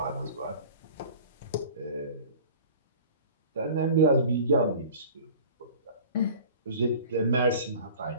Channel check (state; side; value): inverted; both; correlation -0.43